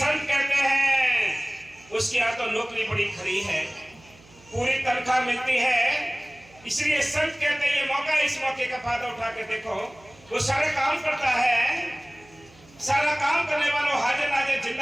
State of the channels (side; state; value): right; noise; hum, 26 dB below the sound